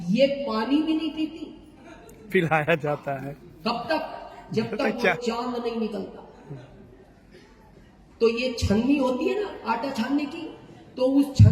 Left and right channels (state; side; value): identical; both; correlation 1.00